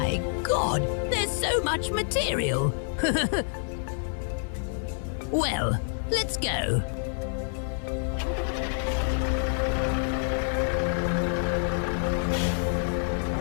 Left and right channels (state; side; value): silent; right; digital silence